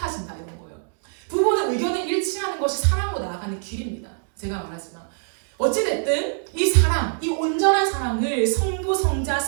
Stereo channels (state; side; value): silent; left; 63 dB below the other